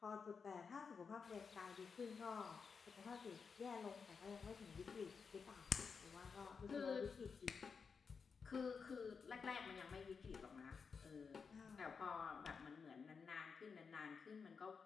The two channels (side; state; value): right; quieter; 5.6 dB